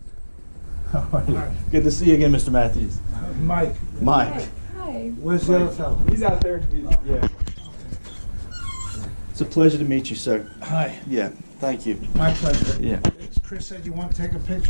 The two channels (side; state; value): both; inverted; correlation -1.00